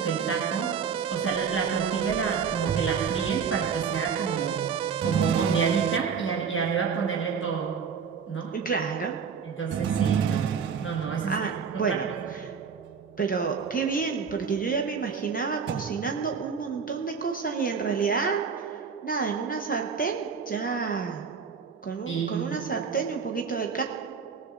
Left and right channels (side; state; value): left; quieter; 6.2 dB